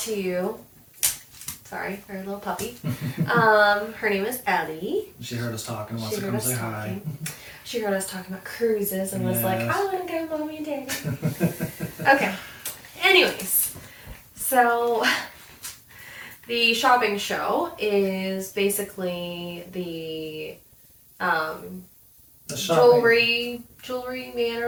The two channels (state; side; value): identical; both; correlation 1.00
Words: to you. Sorry, our little puppy. Her name is Ellie. She heard us talking and wants to come say hi. She heard us talking about cruises and was like, Yes. I want to go, Mommy and Daddy. Okay. Anyways, so the shopping show is basically the The shopping. jewelry man